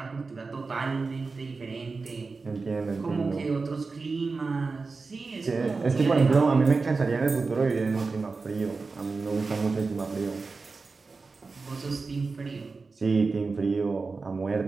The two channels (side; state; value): left; quieter; 4.2 dB